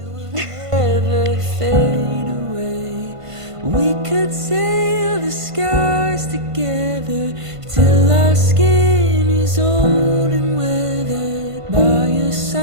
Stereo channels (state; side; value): late; left; 1.5 ms